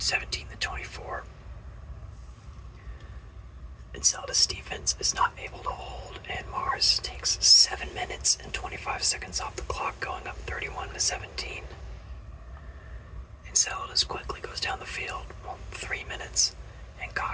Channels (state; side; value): identical; both; correlation 1.00